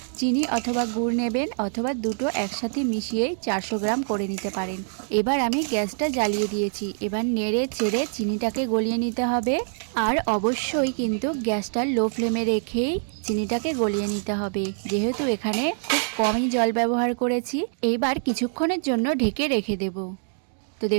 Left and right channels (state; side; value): silent; left; digital silence